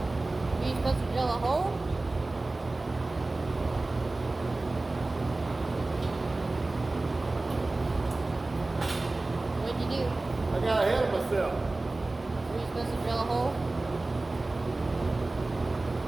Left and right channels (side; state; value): left; quieter; 3.1 dB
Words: Are you supposed to drill a hole? What'd you do? I got ahead of myself. Were you supposed to drill a hole?